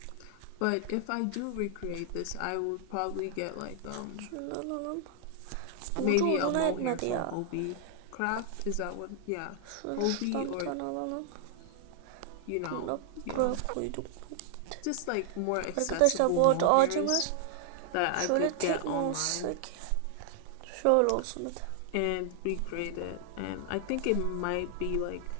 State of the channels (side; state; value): both; different; correlation -0.01